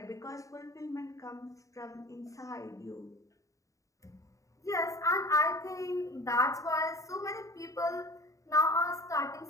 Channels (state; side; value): late; right; 0.16 ms